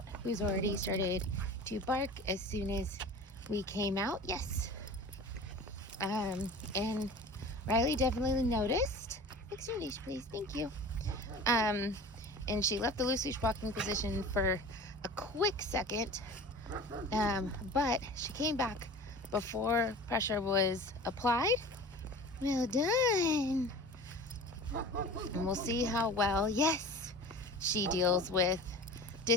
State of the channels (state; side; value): normal; both; correlation 0.37